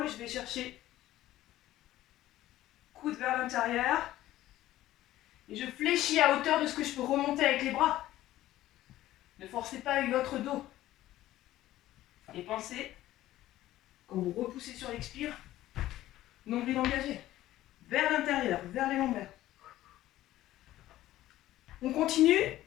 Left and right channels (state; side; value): quieter; right; 14.8 dB